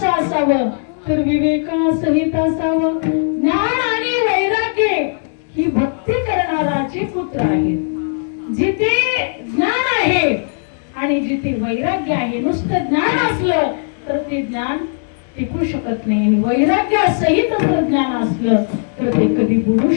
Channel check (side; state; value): right; silent; digital silence